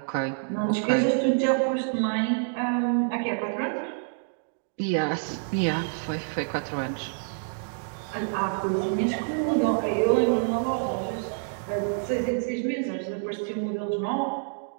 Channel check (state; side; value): silent; left; digital silence